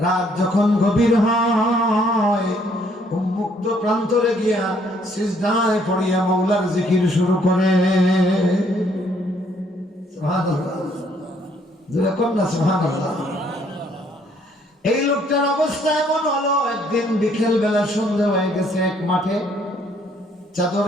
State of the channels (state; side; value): normal; both; correlation 0.66